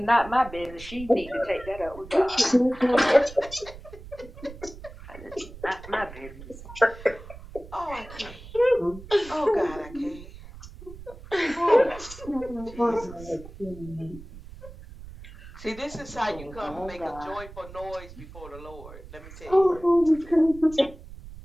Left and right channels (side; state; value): right; noise; rumble, 16 dB below the sound